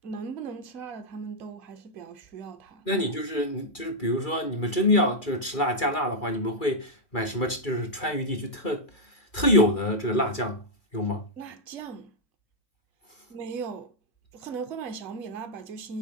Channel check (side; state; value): right; late; 2.3 ms